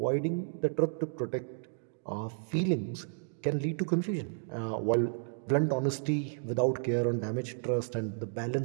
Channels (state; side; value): silent; left; digital silence